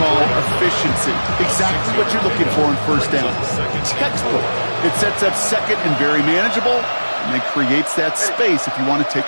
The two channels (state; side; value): inverted; both; correlation -1.00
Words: efficiency. Exactly what you're looking for in first down. Textbook. It sets up 2nd and very manageable, and then creates that space if you want to